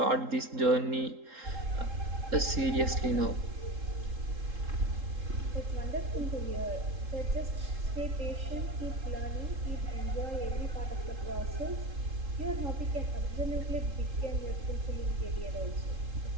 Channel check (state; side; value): late; left; 3.7 ms